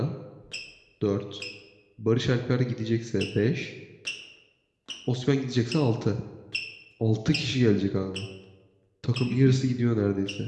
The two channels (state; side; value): identical; both; correlation 1.00